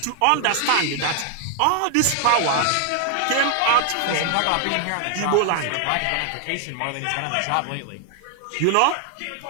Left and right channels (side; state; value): both; different; correlation 0.00